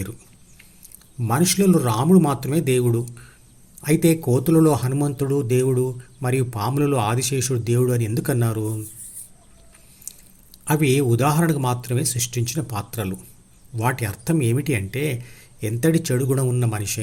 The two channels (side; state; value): both; identical; correlation 1.00